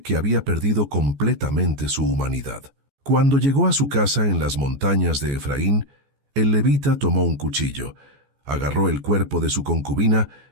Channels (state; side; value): late; left; 14 ms